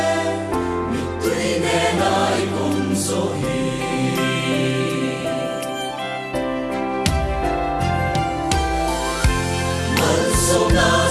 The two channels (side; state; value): both; identical; correlation 1.00